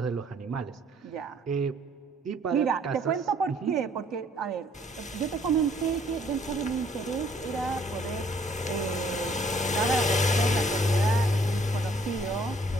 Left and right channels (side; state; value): both; normal; correlation 0.62